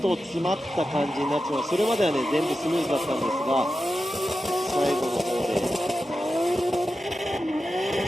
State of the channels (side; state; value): both; normal; correlation 0.91